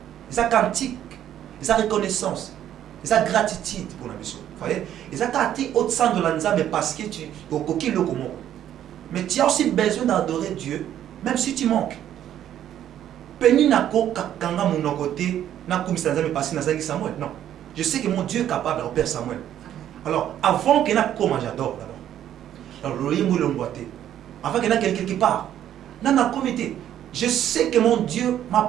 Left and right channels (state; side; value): quieter; left; 11.0 dB